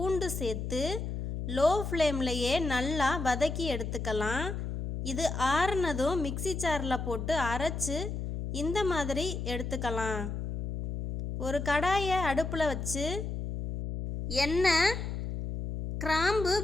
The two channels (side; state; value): left; noise; hum, 4 dB below the sound